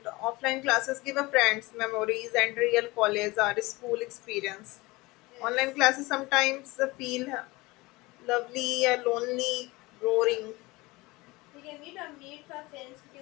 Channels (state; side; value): quieter; right; 22.2 dB